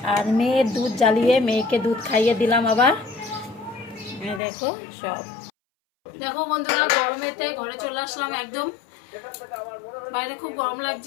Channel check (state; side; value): drops out; right; at 4.4 s